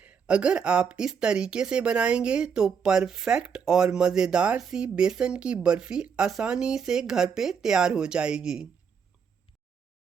अगर आप इस तरीके से बनाएंगे तो परफेक्ट और मज़ेदार सी बेसन की बर्फ़ी आसानी से घर पे तैयार हो जाएगी।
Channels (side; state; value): left; quieter; 6.6 dB